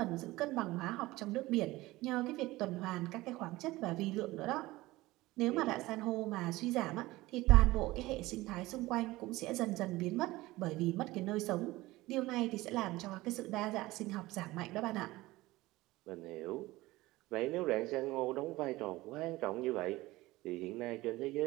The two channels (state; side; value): quieter; left; 19.0 dB